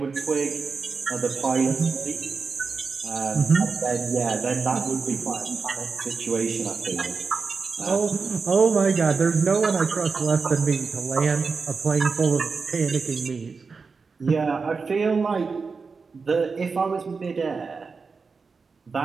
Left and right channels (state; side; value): quieter; left; 4.8 dB